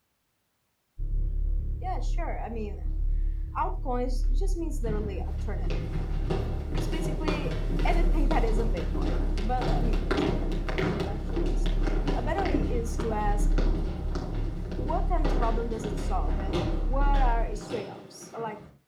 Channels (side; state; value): both; identical; correlation 1.00